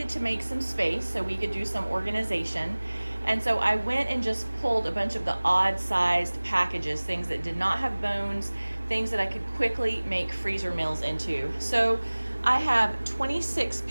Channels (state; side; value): inverted; both; correlation -1.00